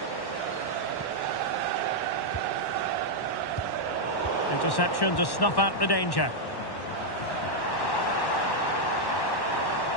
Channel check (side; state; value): right; late; 1.1 ms